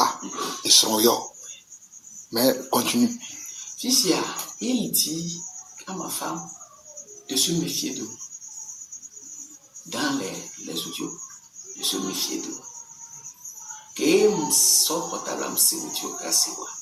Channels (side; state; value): both; identical; correlation 1.00